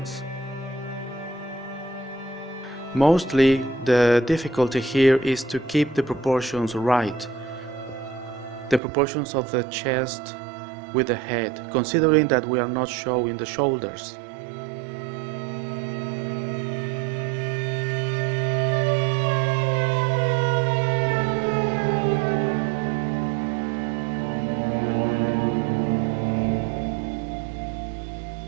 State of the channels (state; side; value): drops out; left; at 8.8 s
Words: Mostly the difficulty here is to keep the proportions right. The proportions of the chest with the head, considering that we are not showing the shoulders.